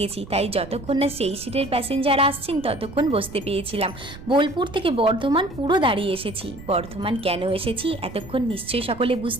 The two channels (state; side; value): noise; right; rumble, 16 dB below the sound